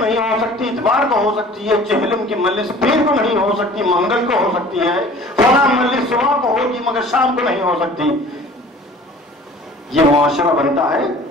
ہو سکتی، اتوار کو ہو سکتی ہے، چہلم کی مجلس پیر کو نہیں ہو سکتی، منگل کو ہو سکتی ہے، فلاں مجلس صبح کو ہوگی مگر شام کو نہیں ہو سکتی۔ یہ معاشرہ بنتا ہے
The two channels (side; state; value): both; normal; correlation 0.47